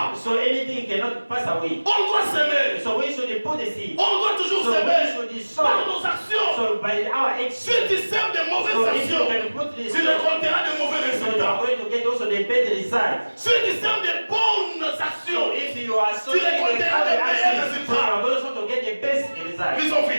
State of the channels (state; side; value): inverted; both; correlation -1.00